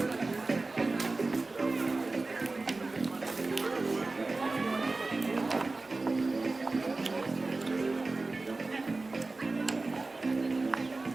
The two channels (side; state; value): left; quieter; 3.5 dB